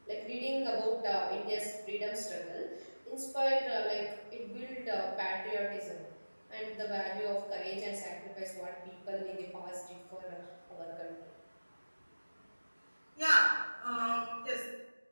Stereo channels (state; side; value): inverted; both; correlation -1.00